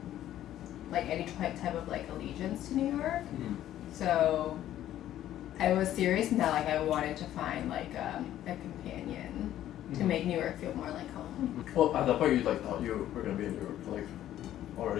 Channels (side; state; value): right; quieter; 12.4 dB